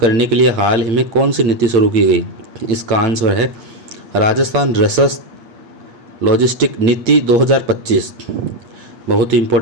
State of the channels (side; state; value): left; late; 8.5 ms